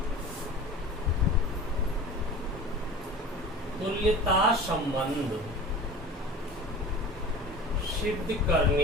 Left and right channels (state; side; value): normal; both; correlation 0.37